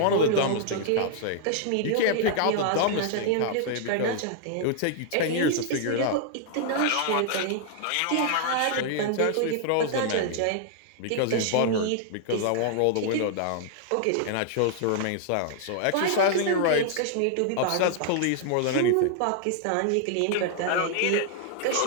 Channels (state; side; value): different; both; correlation -0.01